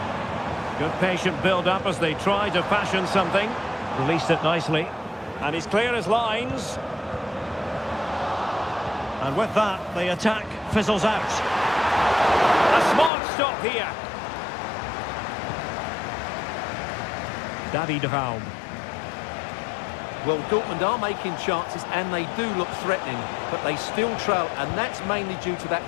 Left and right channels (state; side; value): drops out; right; at 13.1 s